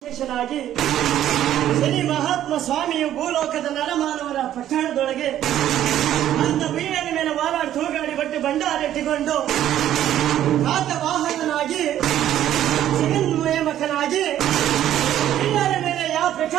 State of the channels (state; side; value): quieter; left; 11.8 dB